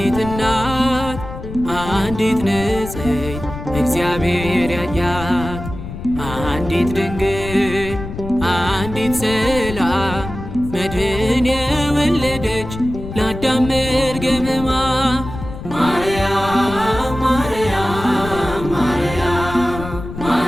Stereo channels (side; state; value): left; noise; rumble, 10 dB below the sound